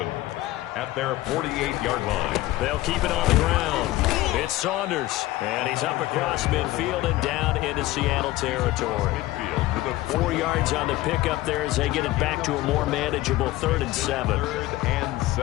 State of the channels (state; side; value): quieter; right; 17.2 dB